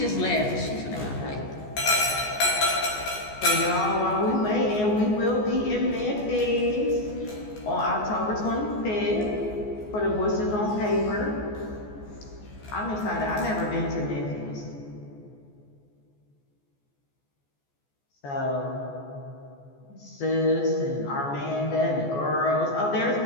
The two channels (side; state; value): right; late; 14 ms